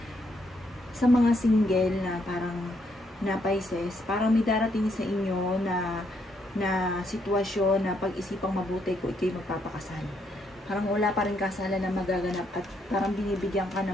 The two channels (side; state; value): both; normal; correlation 0.74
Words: sa mga single na parang na Pisces, parang may darating sa inyo na sitwasyon na pag-isipang mabuti kung ikaw'y magpapakasal. Parang wala pa rin kasalan na magaganap at parang binibigyan ka